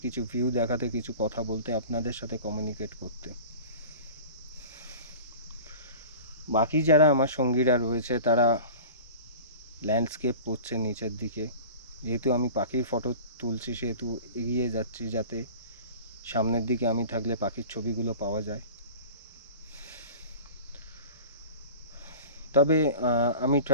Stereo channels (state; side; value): inverted; both; correlation -0.38